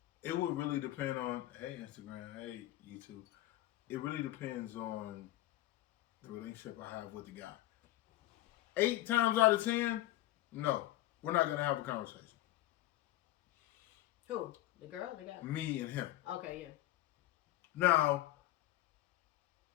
it would really depend on, hey, Instagram, hey, YouTube. It really depends on the relationship I have with the guy. 8 times out of 10, no, we're not going to have a conversation. Who? The girl? The guy? Me and him. Okay, yeah. Now,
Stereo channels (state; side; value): quieter; right; 15.5 dB